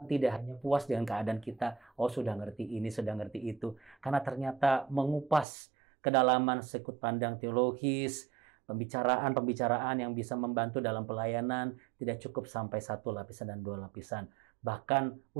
tidak hanya puas dengan keadaan kita, oh sudah ngerti ini, sudah ngerti itu. Karena ternyata mengupas kedalaman sudut pandang teologis, pembicaraan-pembicaraan yang bisa membantu dalam pelayanan, tidak cukup sampai satu lapisan dan dua lapisan. Bahkan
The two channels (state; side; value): drops out; left; at 5.5 s